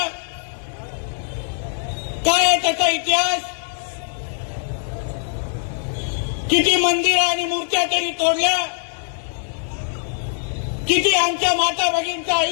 काय आहे त्याचा इतिहास? किती मंदिरं आणि मूर्त्या तरी तोडल्या, किती आमच्या माता भगिनींचं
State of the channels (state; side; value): silent; right; 61 dB below the other